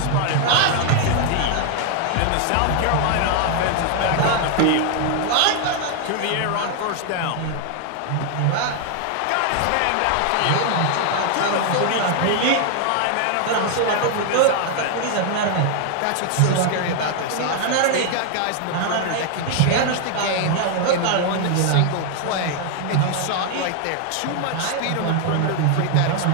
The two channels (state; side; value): different; both; correlation 0.00